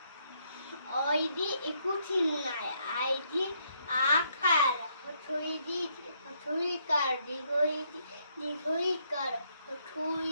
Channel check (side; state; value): both; inverted; correlation -0.73